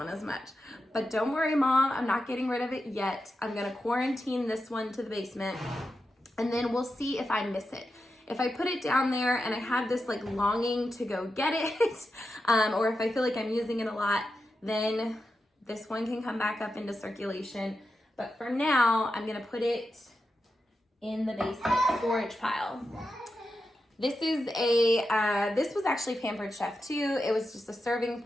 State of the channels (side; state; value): both; normal; correlation 0.89